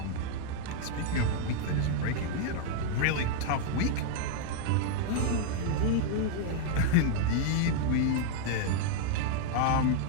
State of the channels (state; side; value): different; both; correlation 0.00